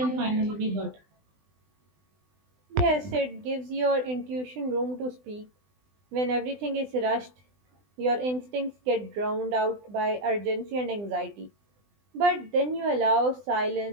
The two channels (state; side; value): late; left; 20 ms